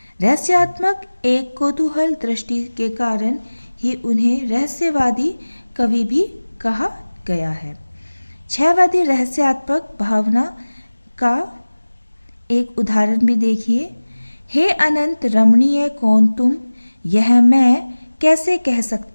रहस्यात्मक एक कौतूहल दृष्टि के कारण ही उन्हें रहस्यवादी कवि भी कहा गया है। छायावादी रहस्यात्मक भावना का एक उदाहरण भी देखिए। हे अनंत रमणीय कौन तुम, यह मैं कैसे कह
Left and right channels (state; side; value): inverted; both; correlation -1.00